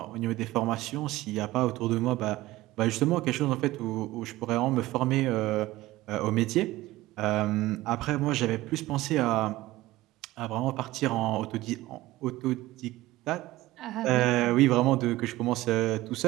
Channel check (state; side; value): quieter; left; 17.5 dB